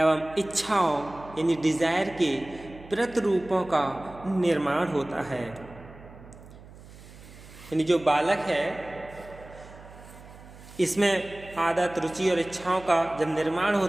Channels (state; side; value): noise; right; hum, 19 dB below the sound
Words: इच्छाओं यानी डिजायर के प्रतिरूपों का निर्माण होता है। यानी जो बालक है इसमें आदत, रुचि और इच्छाओं का जब निर्माण